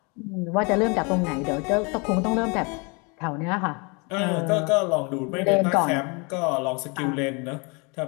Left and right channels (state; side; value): quieter; right; 30.9 dB